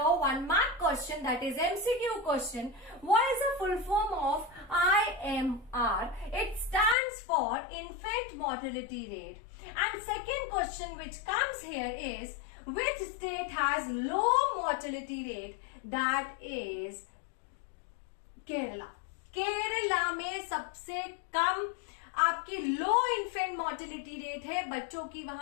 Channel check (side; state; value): right; drops out; at 7.0 s